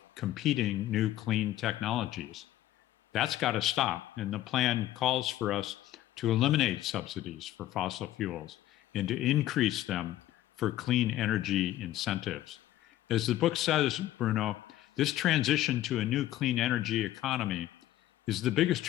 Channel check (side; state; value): right; quieter; 14.0 dB